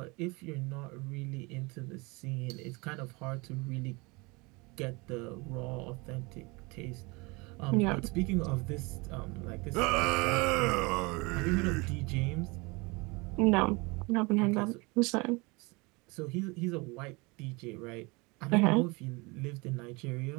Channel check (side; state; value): left; quieter; 26.6 dB